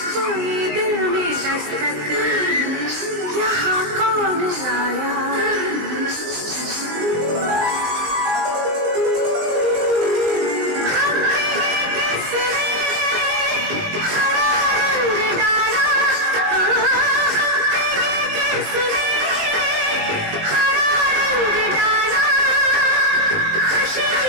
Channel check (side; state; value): left; late; 19 ms